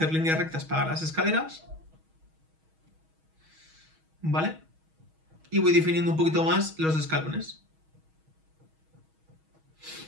líneas rectas para las escaleras, ¿vale? Y voy definiendo un poquito más los escalones.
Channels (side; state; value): left; late; 6.3 ms